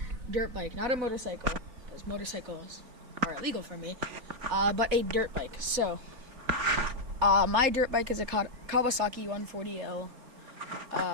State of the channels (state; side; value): late; left; 3.9 ms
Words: dirt bike, not a motorcycle, because motorcycles are illegal for me, but a dirt bike. So, my dirt bike is a Kawasaki 140L.